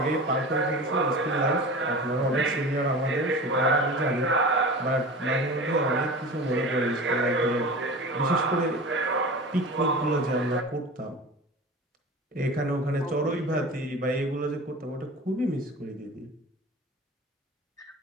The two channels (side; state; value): both; normal; correlation 0.34